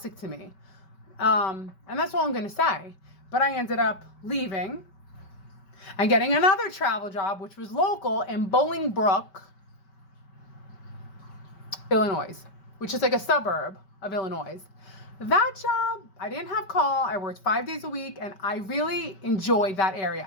to me. And that's all I'm going to say. But I ended up leaving and getting another travel job, which was local in Bolingbrook, Illinois, which is like a suburb of Illinois. That job, I didn't have call. I worked 5 days a week and I really enjoyed that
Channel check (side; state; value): right; late; 5.2 ms